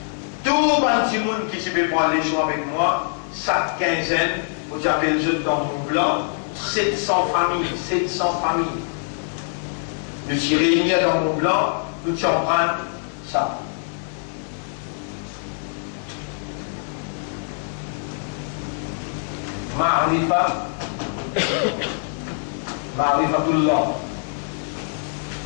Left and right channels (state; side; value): silent; right; 63 dB below the other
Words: Tout le petit monde qui peut prendre les choix avec moi, chaque quinzaine, vous avez le jeu dans mon blanc, 700 familles, 700 familles. Nous sommes réunis dans mon blanc, nous allons prendre ça. Ma'rifatullah.